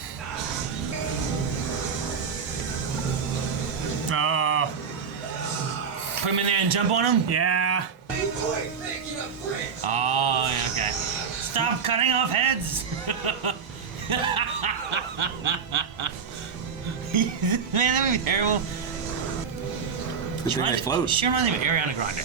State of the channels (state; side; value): quieter; left; 6.2 dB